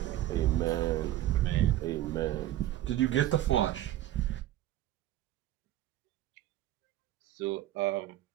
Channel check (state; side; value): quieter; left; 13.8 dB